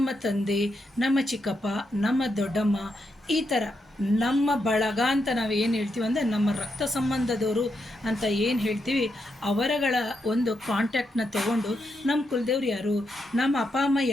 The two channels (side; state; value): both; normal; correlation 0.83